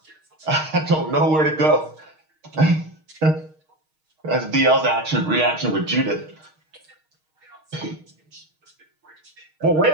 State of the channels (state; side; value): late; left; 6.4 ms